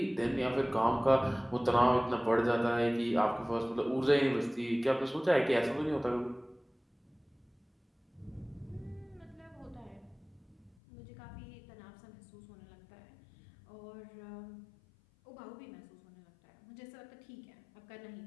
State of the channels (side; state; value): right; drops out; at 10.8 s